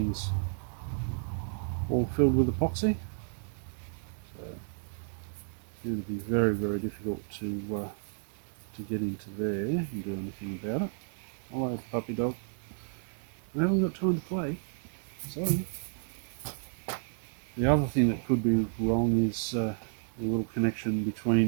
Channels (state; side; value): silent; left; 57 dB below the other